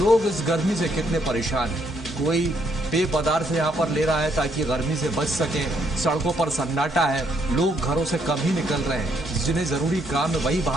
इस गर्मी से कितने परेशान हैं। कोई पेय पदार्थ यहाँ पर ले रहा है ताकि गर्मी से बच सके। सड़कों पर सन्नाटा है, लोग घरों से कम ही निकल रहे हैं। जिन्हें जरूरी काम है वही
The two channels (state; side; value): normal; both; correlation 0.72